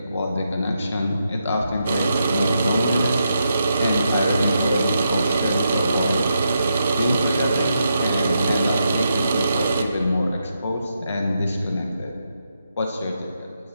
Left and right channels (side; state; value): both; inverted; correlation -0.83